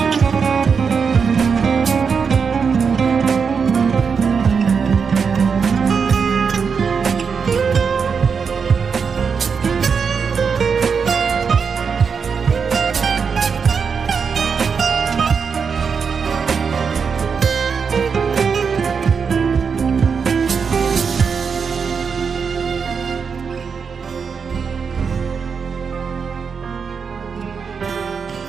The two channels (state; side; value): quieter; left; 5.9 dB